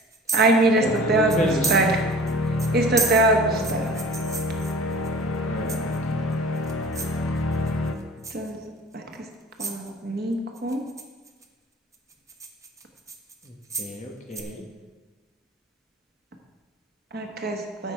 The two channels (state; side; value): normal; both; correlation 0.43